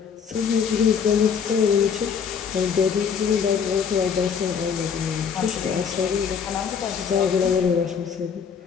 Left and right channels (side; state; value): right; quieter; 6.8 dB